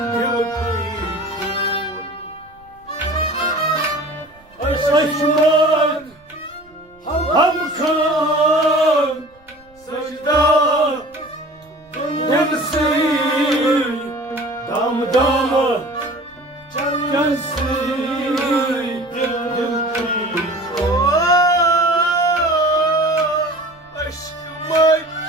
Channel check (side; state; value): right; noise; rumble, 30 dB below the sound